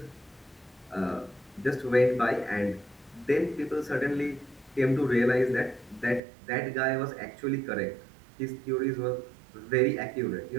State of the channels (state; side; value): drops out; left; at 6.2 s